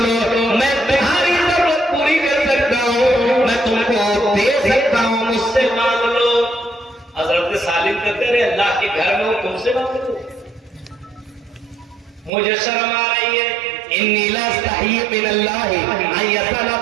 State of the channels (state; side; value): drops out; left; at 12.3 s